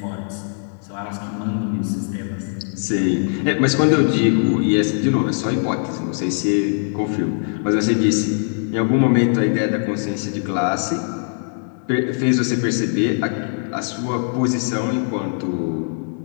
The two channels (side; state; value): right; silent; digital silence